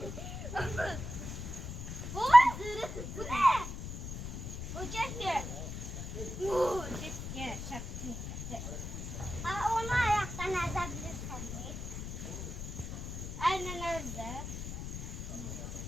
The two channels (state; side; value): noise; left; rumble, 7 dB below the sound